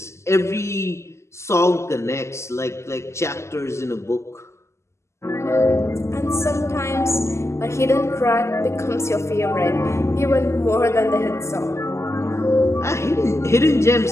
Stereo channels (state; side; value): late; right; 0.13 ms